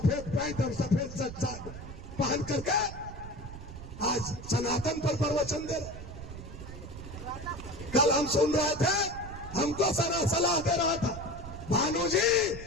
पैंट और सफेद शर्ट पहन करके आज सनातन पर प्रवचन दे रहे। कल हम सुन रहे थे, हमको सलाह दे रहा था, भानु जी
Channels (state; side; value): noise; right; rumble, 11 dB below the sound